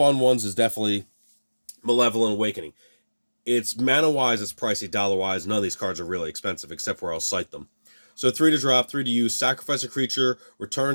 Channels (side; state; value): both; inverted; correlation -1.00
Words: ones is definitely Malevolent Awakening. It's mana-wise, it's pricey. Dollar-wise, none of these cards are really expensive, except where I'll cite them. So 3 to drop, 3 to use, sacrifice a creature,